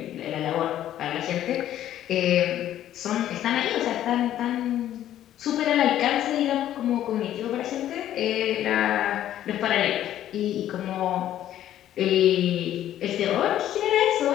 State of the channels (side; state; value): right; quieter; 12.0 dB